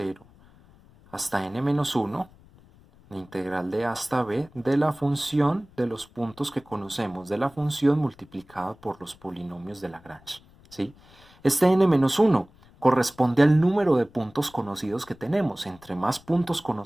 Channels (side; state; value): left; noise; rumble, 26 dB below the sound